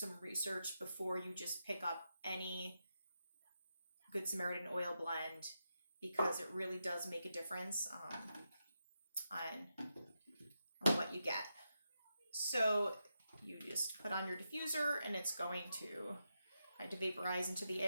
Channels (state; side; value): inverted; both; correlation -0.87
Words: research before you just pick up any Good Samaritan oil blend, because it really does make a difference on what you get. So you just put on your diffuser and it's going to kind of vaporize into the